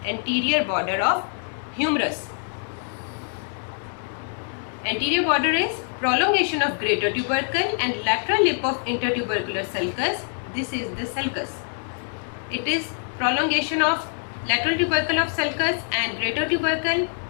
anterior border of humerus. Anterior border is prolongation of greater tubercle and lateral lip of intertubercular sulcus. This is the sulcus. It is prolongation of lateral tubercle of sulcus and greater tubercle,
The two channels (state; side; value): silent; right; 58 dB below the other